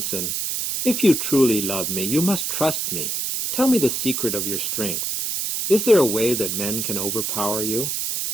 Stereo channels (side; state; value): right; noise; hiss, 1 dB below the sound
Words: "If you truly love me, you must trust me. Tell me the secret of your strength. Is there a way that men can overpower you?"